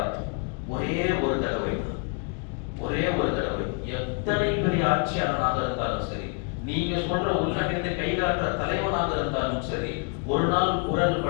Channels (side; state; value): right; quieter; 36.8 dB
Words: ஒரே ஒரு தடவை. எத்தனை பெரிய ஆட்சியாளனாக இருந்தாலும் சரி, நீங்க சொல்ற உள்ளிட்ட கைகாட்டுற தலைவனாக இருந்தாலும் சரி, ஒரு நாள் குரல்